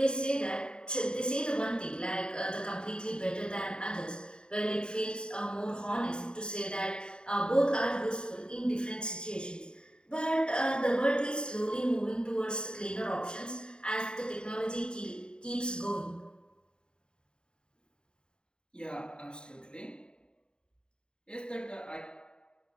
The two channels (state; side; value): late; right; 0.049 ms